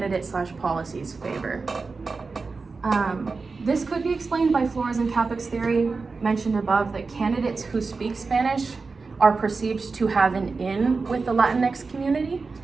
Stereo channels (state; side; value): quieter; left; 4.3 dB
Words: favor. This could be explained by Flores and Capek's theory mentioned above, that candidates who speak Spanish are perceived to have an in with the Latinx community.